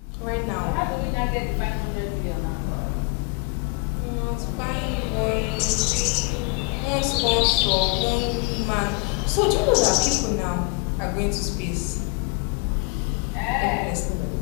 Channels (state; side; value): quieter; right; 30.1 dB